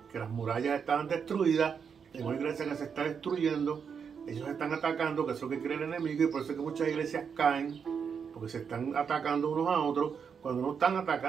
que las murallas estaban destruidas, en una iglesia que se está destruyendo, ellos están atacando, que es lo que quiere el enemigo, y por eso es que muchas iglesias caen, porque se están atacando unos a otros, cuando no están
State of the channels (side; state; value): left; quieter; 6.6 dB